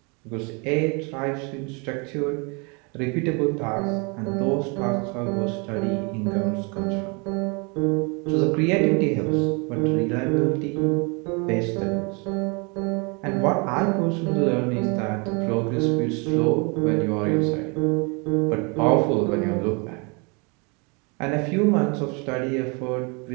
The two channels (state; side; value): quieter; left; 31.7 dB